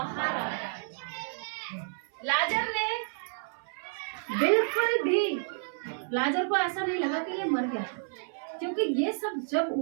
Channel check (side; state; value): left; silent; 58 dB below the other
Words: आ गया। लाजर ने बिल्कुल भी, लाजर को ऐसा नहीं लगा कि ये मर गया, क्योंकि ये सब जब